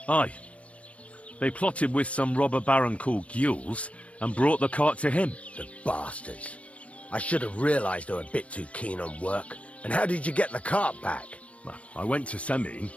Aye. They plotted with some robber baron called Gules and brought the cart to him. The bastards. I should have realised they were a bit too keen on work. And how did you get the cart back? Well, I went to Semin,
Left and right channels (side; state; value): right; late; 0.063 ms